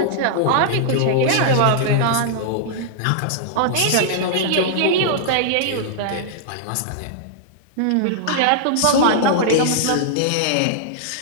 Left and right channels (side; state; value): both; different; correlation -0.01